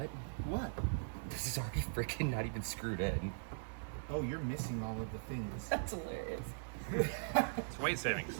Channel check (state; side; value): silent; left; digital silence